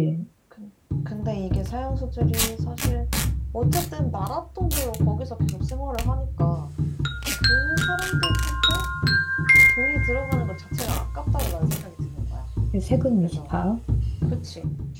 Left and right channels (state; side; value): identical; both; correlation 1.00